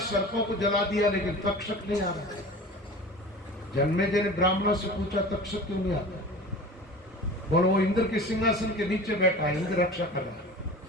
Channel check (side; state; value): both; normal; correlation 0.37